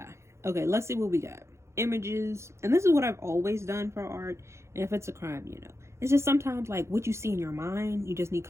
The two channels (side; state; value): left; late; 0.13 ms